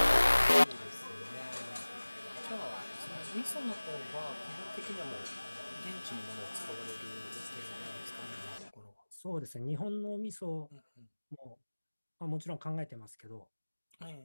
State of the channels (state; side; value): inverted; both; correlation -1.00